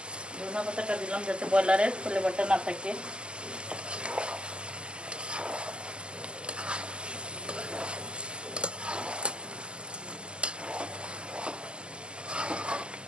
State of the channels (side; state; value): left; late; 0.049 ms